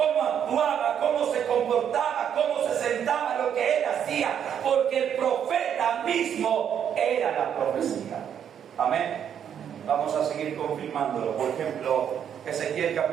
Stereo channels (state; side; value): quieter; left; 8.8 dB